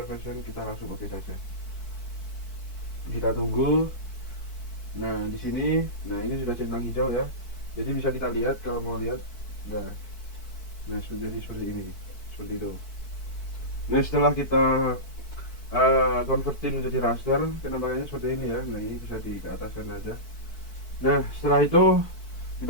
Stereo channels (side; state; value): right; late; 4.6 ms